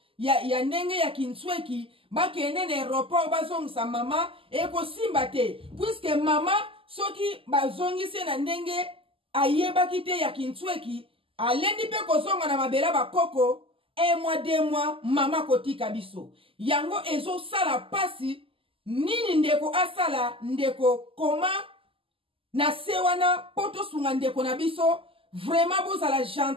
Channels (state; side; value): late; left; 0.26 ms